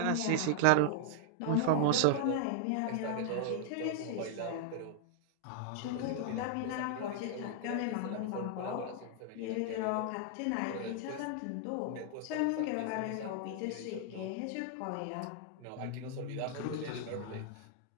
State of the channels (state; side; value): different; both; correlation 0.00